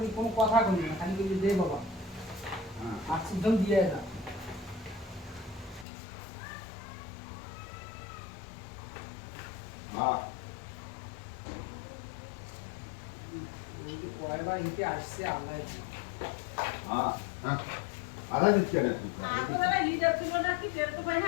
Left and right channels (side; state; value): right; drops out; at 5.9 s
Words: কোনো কথা বলবে না খালি বলবে দে বাবা আর সিদ্ধম দিয়ে যা কয়বার হিটে আসছে আল্লাহ আধা দিচ্ছে না